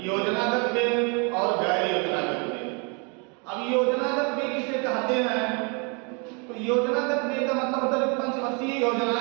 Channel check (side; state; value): left; quieter; 34.0 dB